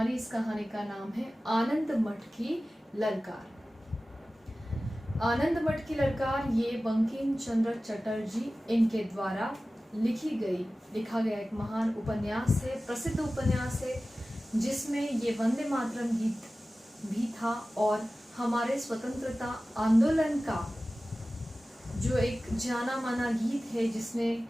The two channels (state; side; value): normal; both; correlation 0.96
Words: इस कहानी का नाम है आनंद मठ की ललकार। आनंद मठ की ललकार ये बंकिम चंद्र चटर्जी इनके द्वारा लिखा गया एक महान उपन्यास है, प्रसिद्ध उपन्यास है, जिसमें ये वंदे मातरम गीत भी था और हमारे स्वतंत्रता आंदोलन का जो एक जाना माना गीत है जिसने